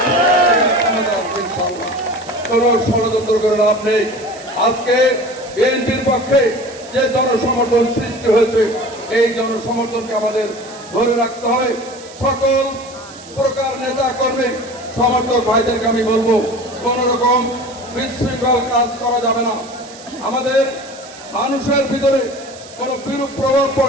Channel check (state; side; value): noise; right; hiss, 19 dB below the sound